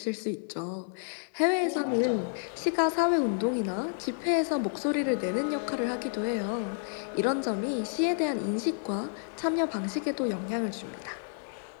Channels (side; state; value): right; silent; 57 dB below the other